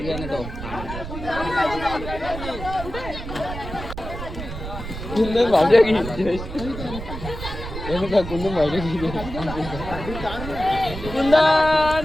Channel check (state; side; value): noise; right; rumble, 9 dB below the sound